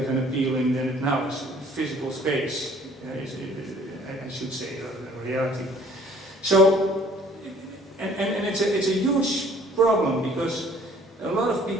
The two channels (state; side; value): normal; both; correlation 0.56